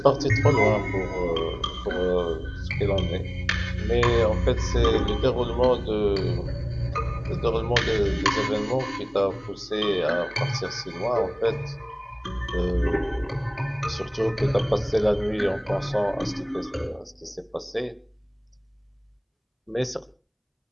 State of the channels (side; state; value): both; identical; correlation 1.00